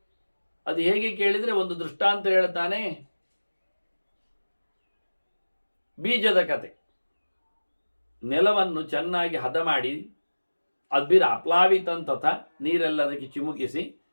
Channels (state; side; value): inverted; both; correlation -1.00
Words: ಅದು ಹೇಗೆ ಕೇಳಿದರೆ ಒಂದು ದೃಷ್ಟಾಂತ ಹೇಳ್ತಾನೆ. ಬೀಜದ ಕತೆ. ನೆಲವನ್ನು ಚೆನ್ನಾಗಿ ಹದ ಮಾಡಿ ಅದ್ಬಿರ ಅಪ್ಲಾವಿತಂತಥ ನೀರೆಲ್ಲ ಅದಕ್ಕೆ ಚಿಮುಕಿಸಿ